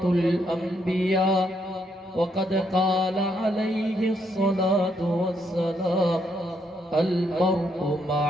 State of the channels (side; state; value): both; normal; correlation 0.75